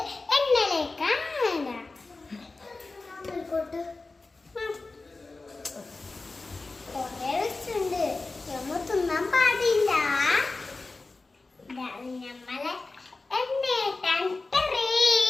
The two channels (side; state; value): right; quieter; 3.5 dB